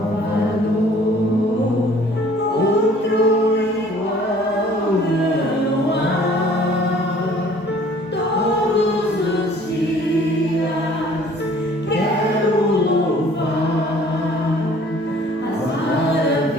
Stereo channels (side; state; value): both; normal; correlation 0.54